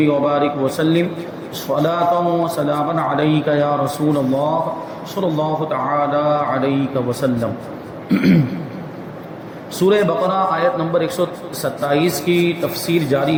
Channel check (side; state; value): both; identical; correlation 1.00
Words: وبارك وسلم صلاة وسلاما عليك يا رسول الله صلى الله تعالى عليك وسلم سورہ بقرہ آیت نمبر 127 کی تفسیر جاری